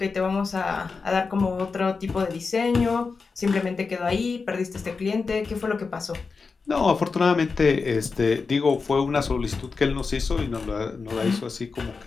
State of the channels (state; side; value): quieter; right; 4.7 dB